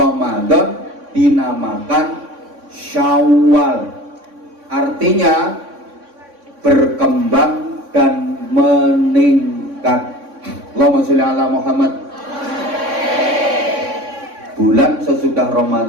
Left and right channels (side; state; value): left; late; 3.6 ms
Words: dinamakan Syawal, artinya berkembang dan meningkat. Allahumma sholli ala Muhammad. Bulan sesudah